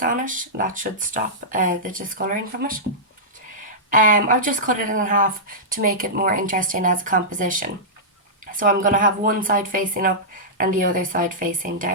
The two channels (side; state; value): both; normal; correlation -0.14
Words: on it. That should stop the discolouring from it. I've just cut it in half to make it more interesting as a composition. So I'm going to have one side facing up and the other side facing